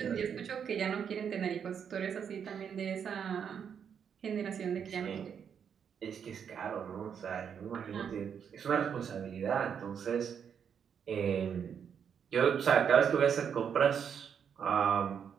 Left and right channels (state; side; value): quieter; left; 7.6 dB